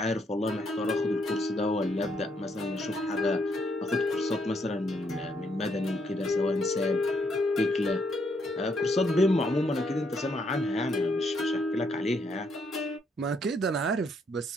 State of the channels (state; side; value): normal; both; correlation 0.74